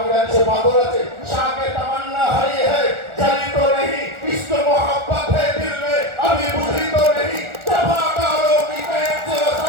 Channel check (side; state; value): left; late; 1.4 ms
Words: জানি সে পাথর আছে, শাকে তামান্না হারিয়ে হ্যাঁ জানি তো নেই, ইস্ক মোহাব্বত হ্যাঁ দিল মে अभी बुझी तो नहीं, जफाकारों की कैद से